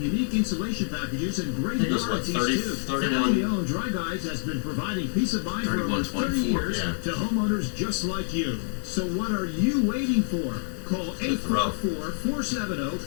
unique insulation packages and great I think it was, what, warranties 30, too. 31? Family-owned Dry Guys has been providing peace of mind for over 30 years to homeowners just like you. So what are you waiting for? Call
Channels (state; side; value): silent; right; 60 dB below the other